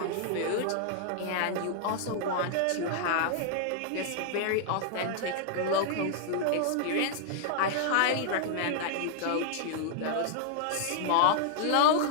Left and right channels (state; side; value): different; both; correlation -0.01